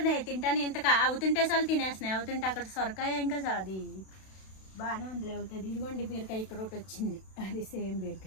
తింటానే ఇంత అవుతుంటే చాలు తినేస్తున్నాయి. అవుతుంటే అక్కడ సొరకాయ ఇంకా అది బాగానే ఉంది అవుతుంది. ఇదిగోండి బీరకాయ ఇక్కడ ఒకటి వచ్చింది, అది సేమ్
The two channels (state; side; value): late; right; 32 ms